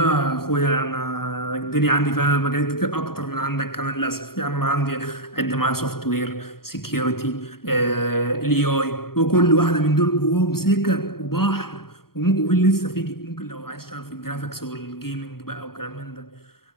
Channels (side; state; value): right; late; 0.93 ms